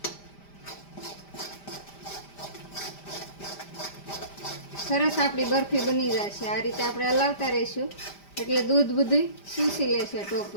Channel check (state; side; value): late; right; 5.0 ms